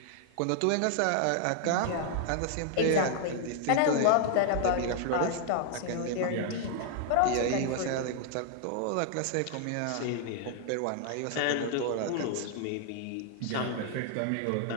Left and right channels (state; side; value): different; both; correlation 0.00